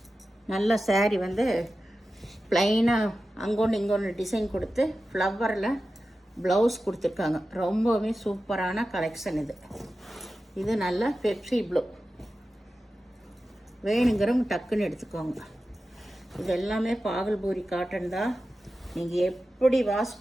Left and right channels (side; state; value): both; normal; correlation 0.93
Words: நல்ல சாரீ வந்து ப்ளைனாக அங்கொன்று இங்கொன்று டிசைன் கொடுத்து ஃப்ளவரில் ப்ளவுஸ் கொடுத்துருக்காங்க. ரொம்பவே சூப்பரான கலெக்ஷன் இது. இது நல்ல பெப்சி ப்ளூ. வேணுங்கிறவங்க டக்குன்னு எடுத்துக்கோங்க. இது எல்லாமே பாகல்பூரி காட்டன் தான். நீங்கள் எப்படி வாஷ்